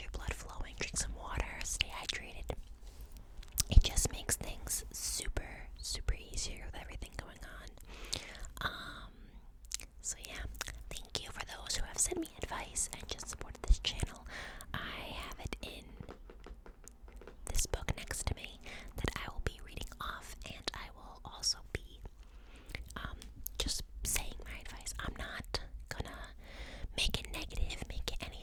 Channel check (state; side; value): identical; both; correlation 1.00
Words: blood flowing, drink some water, stay hydrated. It just makes things super easier with everything going on. So yeah, thank you for those who have sent me advice and just supported this channel. I have it in this book next to me that I will be reading off, and I will also be just saying my advice. I'm not gonna make it negative, make it